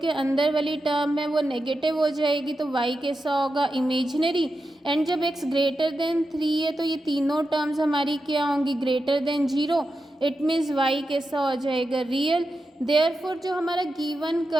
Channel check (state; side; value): normal; both; correlation 0.89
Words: के अंदर वाली टर्म है वो नेगेटिव हो जाएगी तो y कैसा होगा, इमेजिनरी। एंड जब x ग्रेटर देन 3 है तो ये तीनों टर्म्स हमारी क्या होंगी, greater than 0। It means y कैसा हो जाएगा, रियल। देयरफॉर जो हमारा गिवन